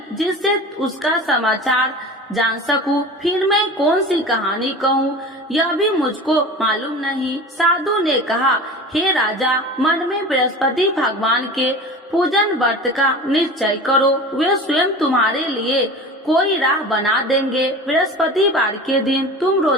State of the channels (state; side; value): normal; both; correlation 0.35